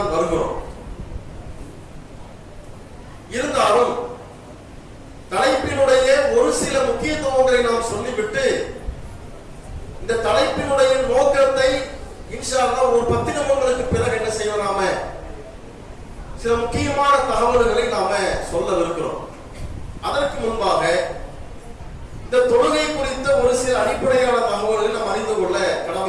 வருகிறோம். இருந்தாலும் தலைப்பினுடைய ஒரு சில முக்கியத்துவங்களை நாம் சொல்லிவிட்டு இந்த தலைப்பினுடைய நோக்கத்தை இன்ஷா அல்லாஹ் ஒரு 10 நிமிடங்களுக்கு பிறகு என்ன செய்வோம், நாம சில முக்கியமான தகவல்களை நாம சொல்லவிருக்கிறோம். அதற்கு முன்பாக இந்த தொழுகை குறித்த ஒரு சில அடிப்படையான தகவல்களை நாம் அறிந்து கொள்ள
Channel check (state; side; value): identical; both; correlation 1.00